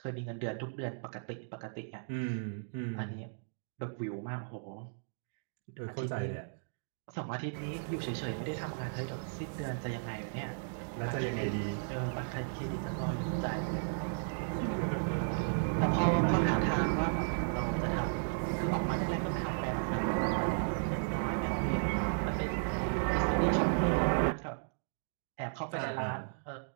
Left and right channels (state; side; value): silent; left; digital silence